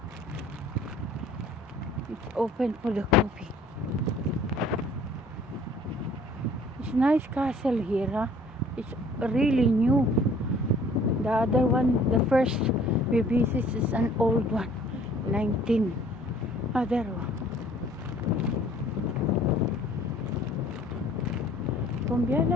It's open for the coffee. It's nice castle here, huh? It's really new. The other one, the first we visit is an old one. 19. Other one.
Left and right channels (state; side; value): normal; both; correlation 0.55